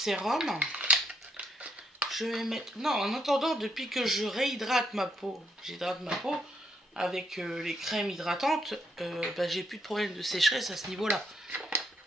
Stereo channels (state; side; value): normal; both; correlation 0.74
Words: Je vais mettre... Non, en attendant, depuis que je réhydrate ma peau, j'hydrate ma peau avec les crèmes hydratantes, bah, j'ai plus de problème de sécheresse à ce niveau-là.